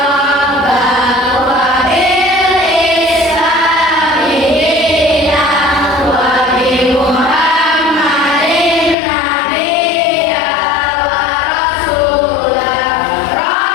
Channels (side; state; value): right; drops out; at 9.0 s